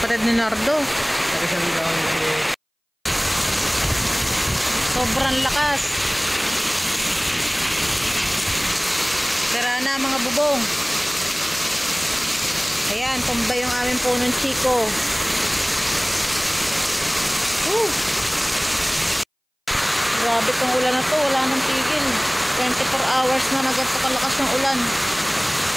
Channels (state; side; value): identical; both; correlation 1.00